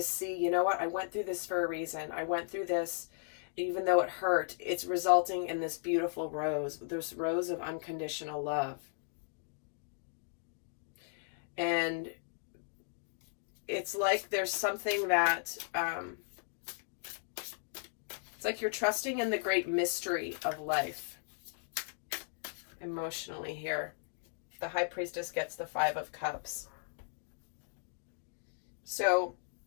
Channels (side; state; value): right; silent; digital silence